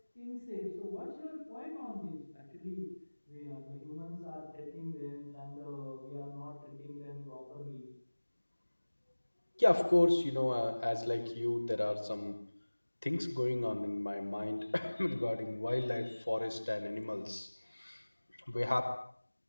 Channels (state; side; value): inverted; both; correlation -1.00